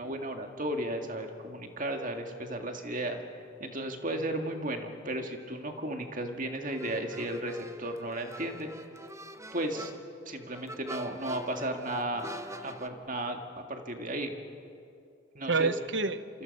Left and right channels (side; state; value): both; normal; correlation 0.15